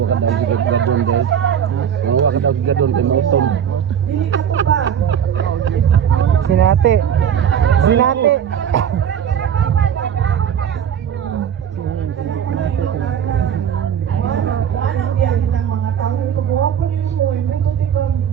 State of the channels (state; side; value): quieter; left; 8.7 dB